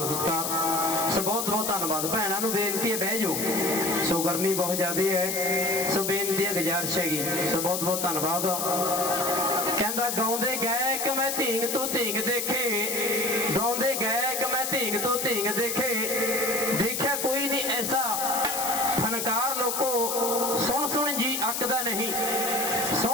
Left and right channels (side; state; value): left; noise; hiss, 2 dB below the sound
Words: ਸਤਿਕਾਰ। ਸੋ ਬਹੁਤ ਬਹੁਤ ਧੰਨਵਾਦ। ਭੈਣਾਂ ਨੂੰ ਬੇਨਤੀ ਹੈ ਬਹਿ ਜਾਓ, ਸੋ ਗਰਮੀ ਬਹੁਤ ਜ਼ਿਆਦਾ ਹੈ, ਸੋ ਬੇਨਤੀ ਹੈ, ਗੁਜ਼ਾਰਿਸ਼ ਹੈਗੀ। ਸੋ ਬਹੁਤ ਬਹੁਤ ਧੰਨਵਾਦ। ਕਹਿੰਦਾ ਗਾਉਂਦੇ ਗਾਇਕ ਮੈਂ ਧੀਂਗ ਤੋਂ ਧੀਂਗ ਦੇਖੇ, ਗਾਉਂਦੇ ਗਾਇਕ ਮੈਂ ਧੀਂਗ ਤੋਂ ਧੀਂਗ ਦੇਖੇ, ਦੇਖਿਆ ਕੋਈ ਨਹੀਂ ਐਸਾ ਫਨਕਾਰ ਲੋਕੋ, ਸੁਣ ਸੁਣ ਜੀ ਅੱਕਦਾ ਨਹੀਂ,